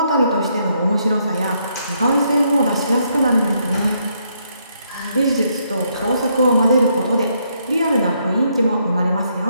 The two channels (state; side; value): inverted; both; correlation -0.74